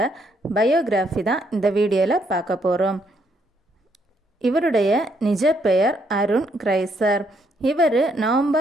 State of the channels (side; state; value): both; normal; correlation 0.72